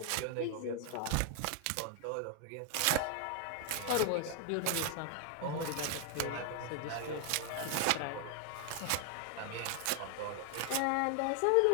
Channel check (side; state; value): both; different; correlation 0.00